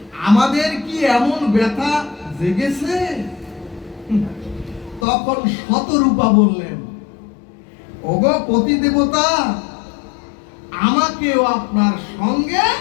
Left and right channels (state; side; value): drops out; right; at 5.1 s